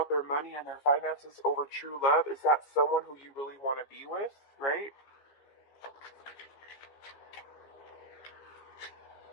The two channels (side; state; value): right; late; 15 ms